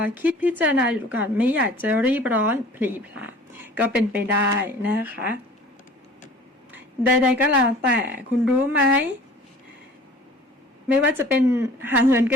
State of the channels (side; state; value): both; normal; correlation 0.47